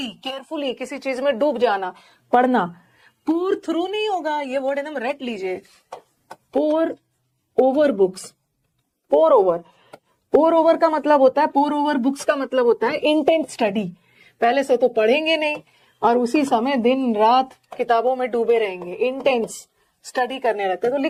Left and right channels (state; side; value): identical; both; correlation 1.00